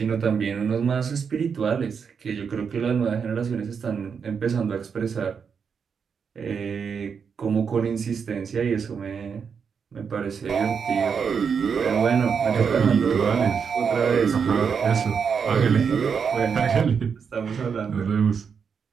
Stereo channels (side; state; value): left; quieter; 6.4 dB